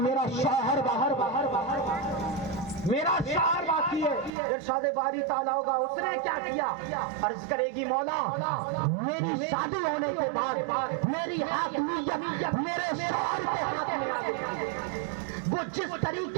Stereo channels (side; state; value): left; drops out; at 4.3 s